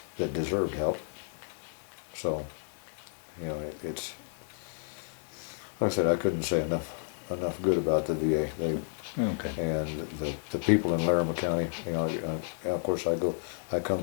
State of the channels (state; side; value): silent; right; 57 dB below the other